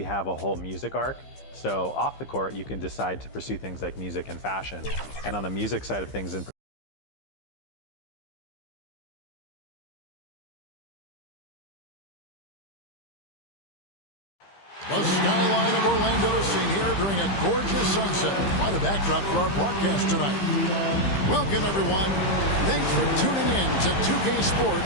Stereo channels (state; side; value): late; right; 15 ms